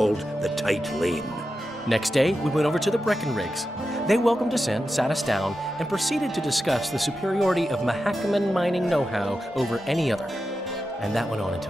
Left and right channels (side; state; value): both; normal; correlation 0.90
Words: the Tight Lane. Next day, we went over to the Breckenrigs. They welcomed us in, sat us down, and proceeded to discuss the superiority of Mahakaman mining know-how over any other. And that went on